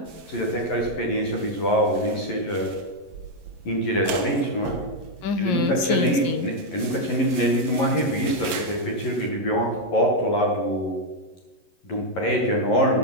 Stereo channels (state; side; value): late; right; 11 ms